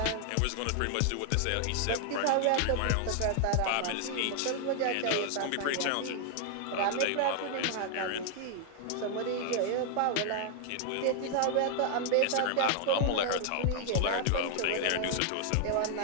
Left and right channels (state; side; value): different; both; correlation 0.00